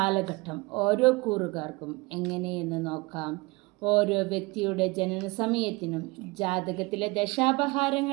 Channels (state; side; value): quieter; left; 24.7 dB